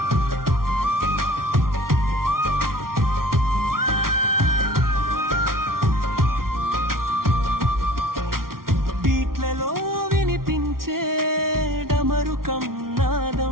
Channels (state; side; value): late; left; 0.93 ms